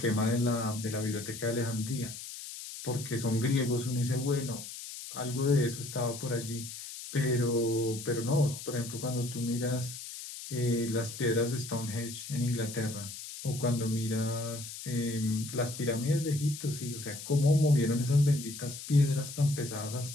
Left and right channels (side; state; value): left; noise; hiss, 10 dB below the sound